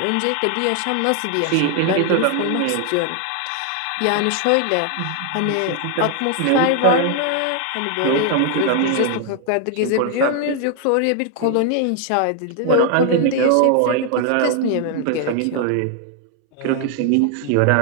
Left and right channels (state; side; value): different; both; correlation 0.00